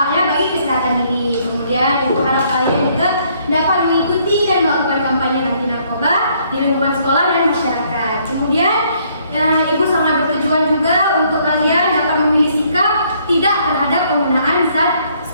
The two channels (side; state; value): both; inverted; correlation -0.67